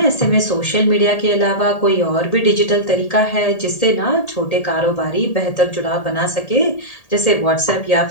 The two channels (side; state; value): right; late; 1.8 ms